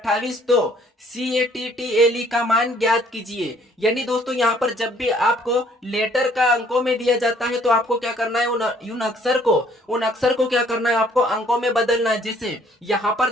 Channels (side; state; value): both; normal; correlation 0.61